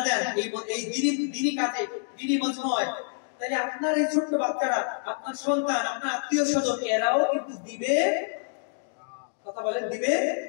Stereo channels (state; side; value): silent; right; digital silence